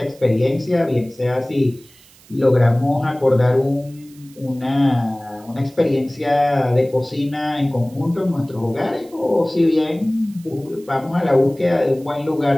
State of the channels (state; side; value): noise; right; hiss, 26 dB below the sound